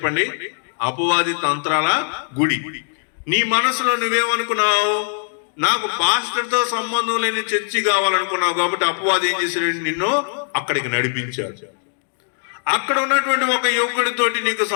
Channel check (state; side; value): silent; right; digital silence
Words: అపవాది తంత్రాల గుడి. నీ మనసులో నువ్వేమనుకున్నావు? నాకు పాస్టర్ తో సంబంధం లేని చర్చి కావాలనుకున్నావు, కాబట్టి అపవాది ఏం చేశాడు? నిన్ను అక్కడికి నడిపించాడు. అక్కడ ఉన్నటువంటి ఒక యువకుడితోటి నీకు